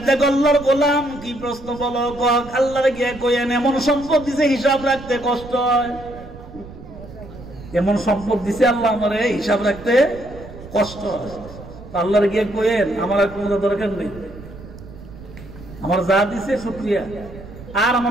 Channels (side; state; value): right; noise; rumble, 16 dB below the sound